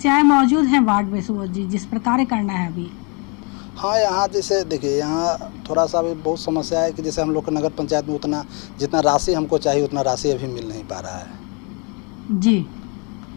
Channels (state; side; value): quieter; right; 33.6 dB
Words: मौजूद हैं वार्ड में सुबोध जी जिस पर कार्य करना है अभी? हाँ, यहाँ जैसे देखिए यहाँ थोड़ा सा भी बहुत समस्या है कि जैसे हम लोग को नगर पंचायत में उतना जितना राशि हमको चाहिए उतना राशि अभी मिल नहीं पा रहा है। जी।